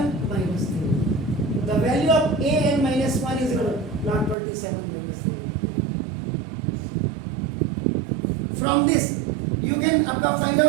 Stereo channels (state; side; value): drops out; left; at 4.4 s